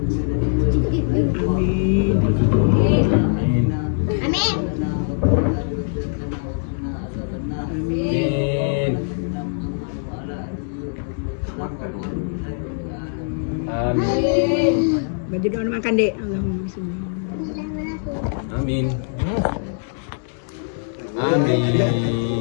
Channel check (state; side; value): silent; right; digital silence